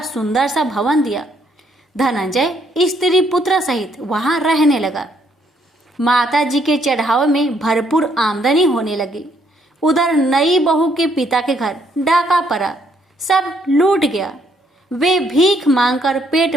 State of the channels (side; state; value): both; normal; correlation 0.70